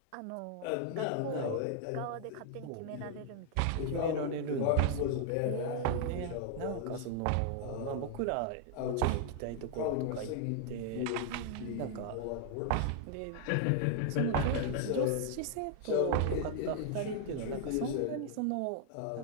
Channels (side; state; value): both; different; correlation 0.00